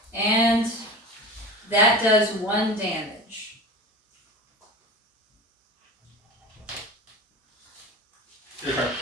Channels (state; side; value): normal; both; correlation 0.32